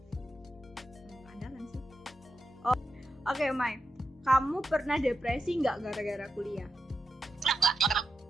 Keandalan sih. Oh, oke, Mai. Kamu pernah depresi nggak gara-gara kuliah?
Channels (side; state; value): both; normal; correlation 0.87